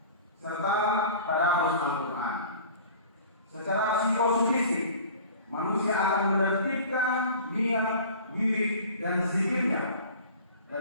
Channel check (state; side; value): inverted; both; correlation -0.42